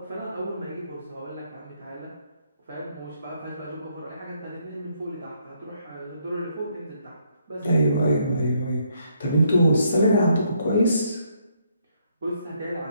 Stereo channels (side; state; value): both; inverted; correlation -0.71